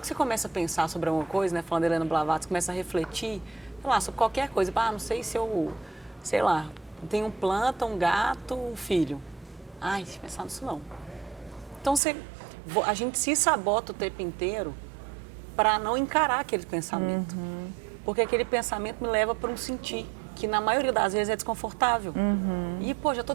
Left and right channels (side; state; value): left; drops out; at 12.0 s